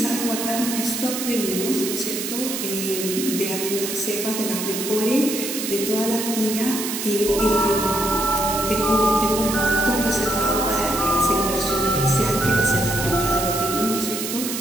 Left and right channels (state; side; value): noise; right; hiss, 4 dB below the sound